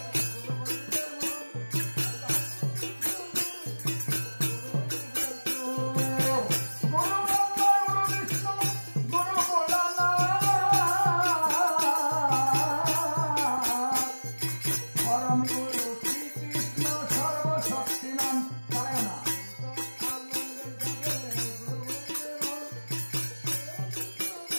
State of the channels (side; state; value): both; inverted; correlation -1.00